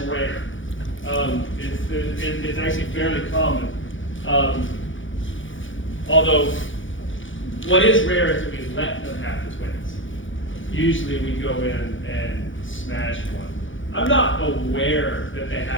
It's actually fairly common. Although, what is rare is that we let them have the twins. Usually we go in and smash one. I'm not aware that they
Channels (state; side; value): late; right; 0.56 ms